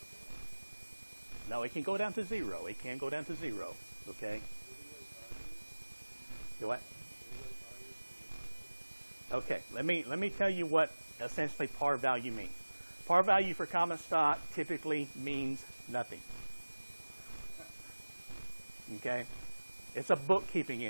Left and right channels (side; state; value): both; inverted; correlation -1.00